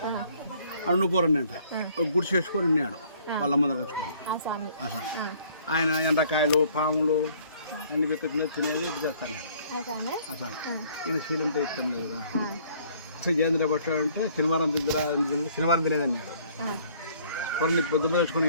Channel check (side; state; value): both; inverted; correlation -0.59